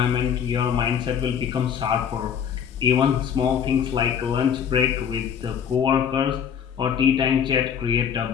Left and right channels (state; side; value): quieter; right; 8.0 dB